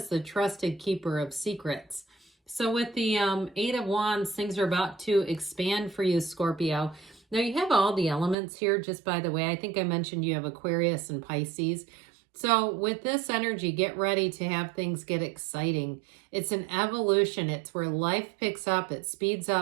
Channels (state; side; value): drops out; left; at 8.3 s